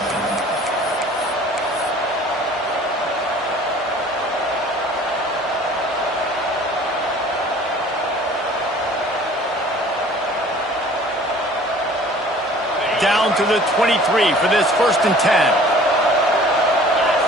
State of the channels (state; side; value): normal; both; correlation 0.49